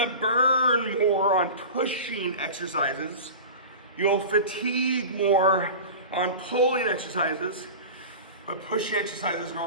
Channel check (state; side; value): inverted; both; correlation -0.32